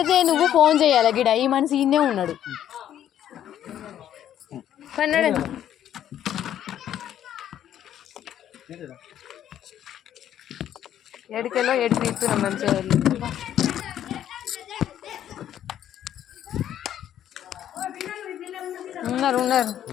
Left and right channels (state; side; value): quieter; right; 10.9 dB